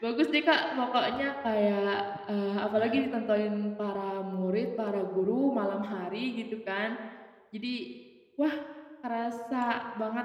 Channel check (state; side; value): identical; both; correlation 1.00